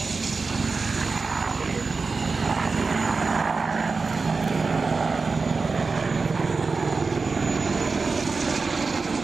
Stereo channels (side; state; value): left; quieter; 4.3 dB